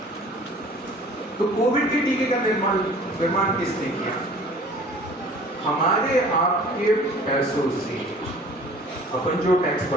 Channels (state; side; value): normal; both; correlation 0.48